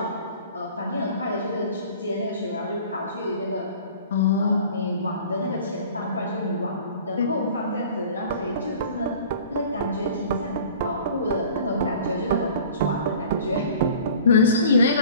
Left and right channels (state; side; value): inverted; both; correlation -0.46